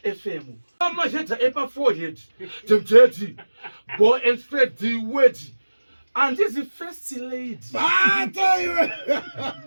FM. Mama heta epa forehead. Tempted. Go and spread the word. And this is the first lady.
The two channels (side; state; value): both; inverted; correlation -1.00